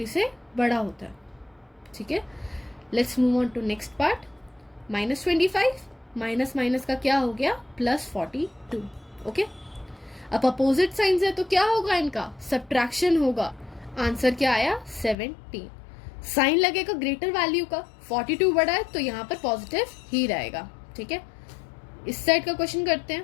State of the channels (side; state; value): right; drops out; at 15.2 s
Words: से बड़ा होता है। ठीक है, let's move on to next part. -25 minus minus का क्या हो गया, +42। ओके, अब अपोजिट साइंस है तो क्या होगा, इनका सब्ट्रैक्शन होगा, आंसर क्या आया 17। साइन लगेगा ग्रेटर वैल्यू का, 42 बड़ा है तो यहाँ पर पॉजिटिव ही रहेगा। ठीक है, इस साइड का क्वेश्चन करते